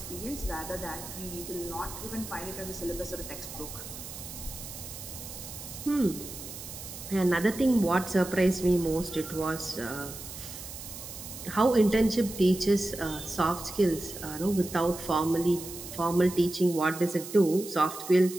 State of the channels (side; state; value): right; noise; hiss, 11 dB below the sound